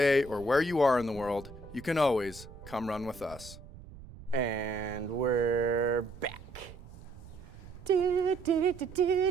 or where you are in the world, you can always come run with us. And we're back.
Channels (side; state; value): right; noise; rumble, 17 dB below the sound